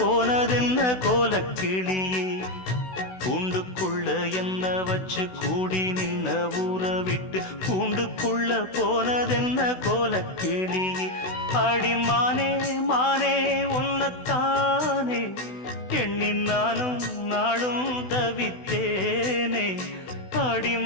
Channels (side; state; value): right; late; 16 ms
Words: கோலக்கிளியே. கூண்டுக்குள்ள என்ன வச்சு கூடி நின்ன ஊற விட்டு கூண்டுக்குள்ள போனதென்ன கோலக்கிளியே. அடிமானே மானே உன்னத்தானே எண்ணி நானும் நாளும் தவித்தேனே.